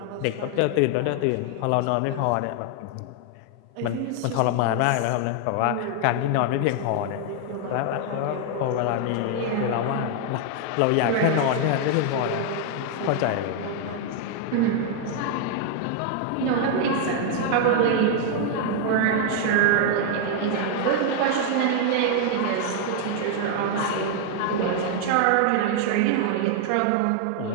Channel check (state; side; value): different; both; correlation 0.00